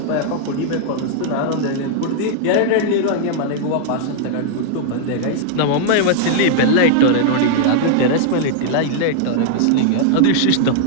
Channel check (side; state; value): both; different; correlation -0.01